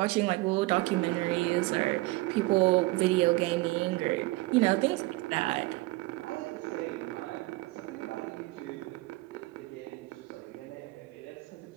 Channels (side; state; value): left; quieter; 21.2 dB